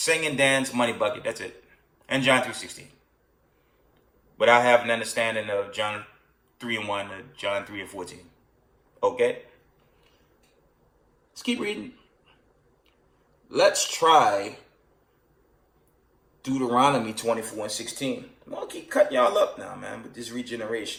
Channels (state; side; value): identical; both; correlation 1.00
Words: and dance, money bucket, that's it. And John 3:16. Without having an understanding of John 3:1 to John 3:14. Okay? Let's keep reading. Let's try Deuteronomy 24:16. I'm going to keep cutting y'all up now, man, with this